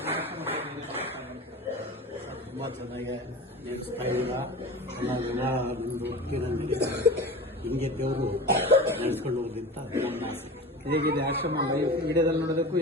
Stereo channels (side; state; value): both; normal; correlation 0.33